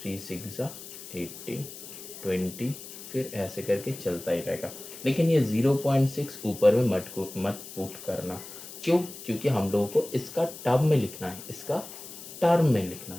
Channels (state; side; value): noise; left; hiss, 13 dB below the sound